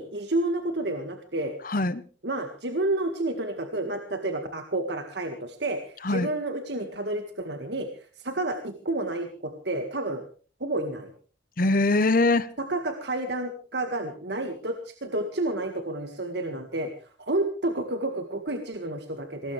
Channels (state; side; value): normal; both; correlation 0.20